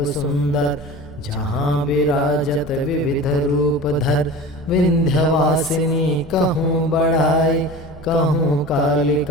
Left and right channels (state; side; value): normal; both; correlation 0.35